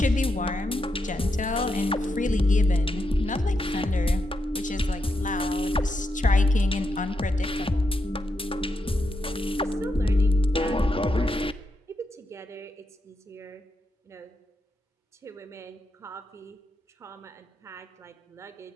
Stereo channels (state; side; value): normal; both; correlation 0.84